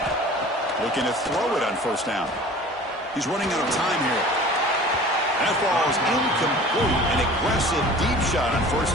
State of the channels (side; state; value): both; normal; correlation 0.43